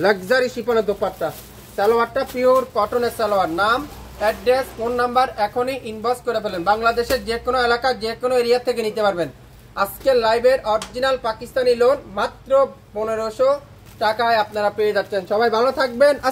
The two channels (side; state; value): both; identical; correlation 1.00